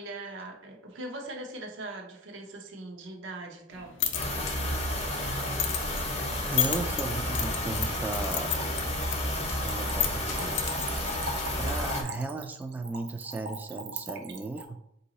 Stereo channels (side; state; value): both; normal; correlation 0.30